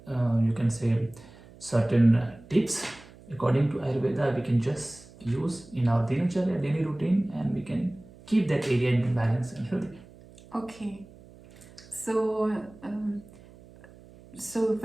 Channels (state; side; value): noise; right; hum, 22 dB below the sound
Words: you can say certain tips according to Ayurveda we can just use in our dinacharya daily routine, and we can keep that area in balance and healthy. Okay. So